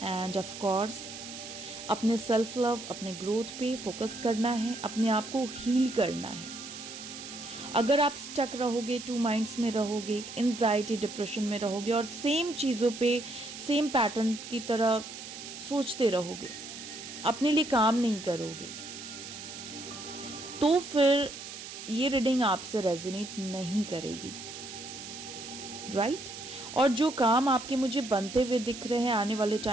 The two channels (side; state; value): right; noise; hiss, 11 dB below the sound